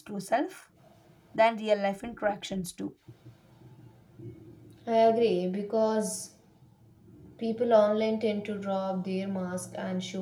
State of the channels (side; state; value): both; identical; correlation 1.00